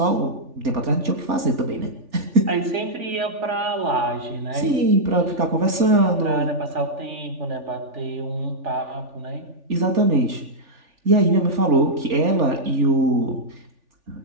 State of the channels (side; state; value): left; late; 3.4 ms